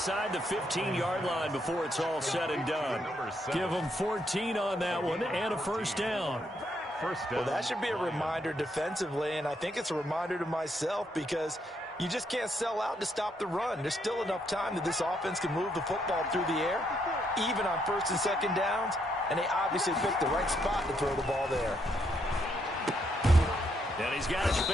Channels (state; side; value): normal; both; correlation 0.75